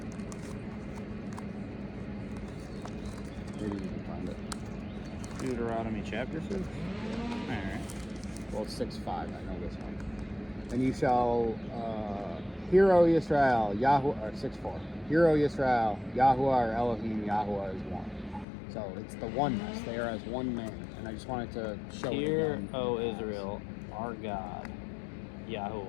Maybe you can find it. Deuteronomy chapter 6? Alright. Well, it's 6:5, I know this one. And you shall hear, O Yisrael, Yahuwah, or 6:4. Hear, O Yisrael, Yahuwah or Elohim, Yahuwah is one. So it's the oneness. They are as one man. And I just wanted to show it Hear, again. O Israel, our God,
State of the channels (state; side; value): drops out; right; at 18.4 s